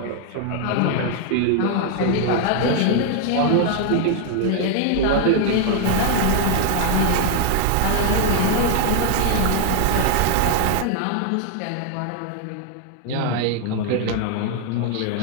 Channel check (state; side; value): different; both; correlation 0.00